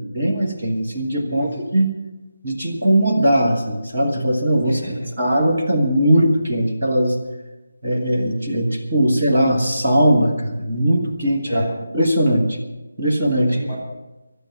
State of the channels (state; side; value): inverted; both; correlation -0.86